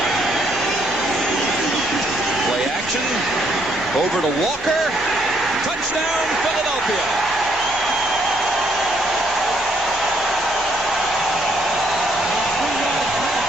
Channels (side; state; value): both; normal; correlation 0.70